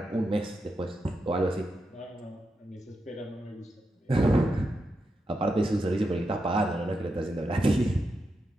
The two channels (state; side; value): normal; both; correlation 0.86